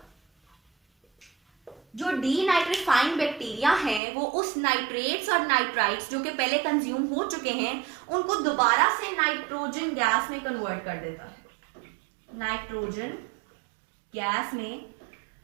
जो डीनाइट्रीफाइंग बैक्टीरिया हैं वो उस नाइट्रेट्स और नाइट्राइट्स जो कि पहले कंज्यूम हो चुके हैं उनको दोबारा से नाइट्रोजन गैस में कन्वर्ट कर देता है. नाइट्रोजन गैस में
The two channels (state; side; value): drops out; left; at 4.0 s